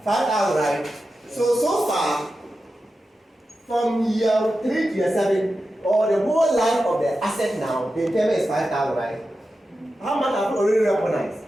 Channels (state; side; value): normal; both; correlation 0.91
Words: 5,000, right? So far, from year 3 to year 7, or the whole life of the asset now, the impairment is 5,000, right? How much have you already recognized?